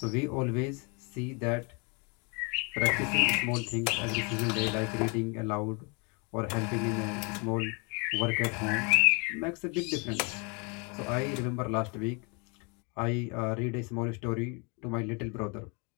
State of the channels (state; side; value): quieter; right; 32.6 dB